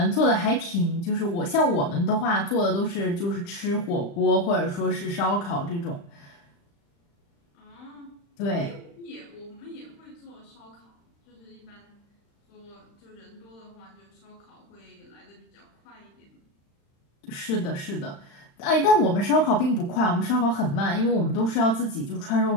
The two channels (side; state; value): right; late; 35 ms